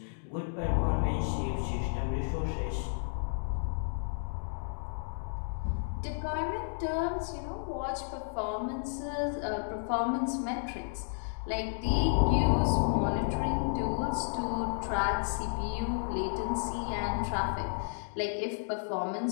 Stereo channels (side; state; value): right; silent; digital silence